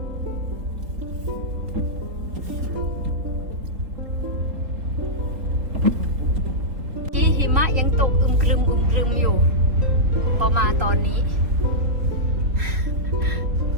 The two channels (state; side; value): late; left; 3.5 ms